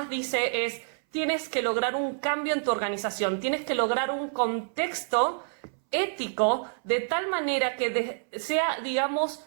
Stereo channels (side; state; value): left; silent; 59 dB below the other